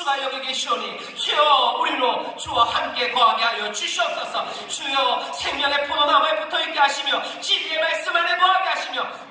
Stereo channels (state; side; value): identical; both; correlation 1.00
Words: 여기 계시오니 주여 우리로 주와 함께 거하게 하여 주시옵소서. 주여 생명의 포도나무에 붙어있게 하시며 진리의 말씀 안에 거하게 하시며